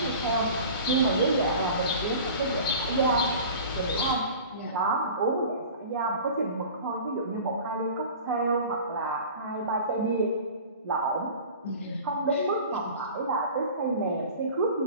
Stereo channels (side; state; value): both; inverted; correlation -0.40